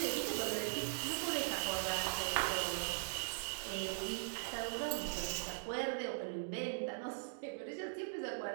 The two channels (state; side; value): silent; left; digital silence